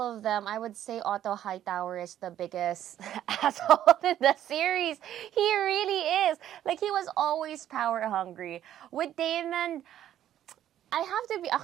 of them, I would say Otto Hightower is the biggest asshole in the series. He really is. Like, he was always power hungry. With Daemon, I have to be...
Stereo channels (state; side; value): quieter; left; 11.5 dB